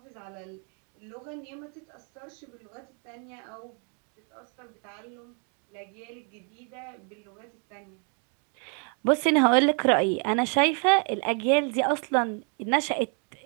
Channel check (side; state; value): left; quieter; 39.3 dB